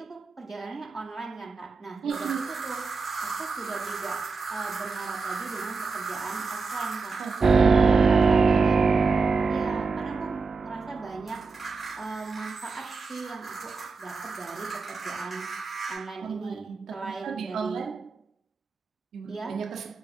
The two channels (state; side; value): quieter; left; 4.4 dB